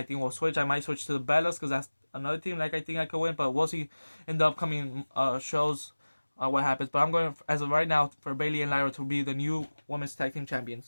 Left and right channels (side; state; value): both; inverted; correlation -1.00